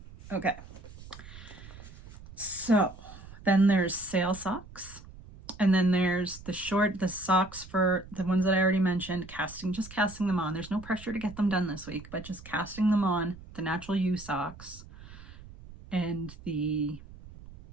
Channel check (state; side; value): noise; right; rumble, 17 dB below the sound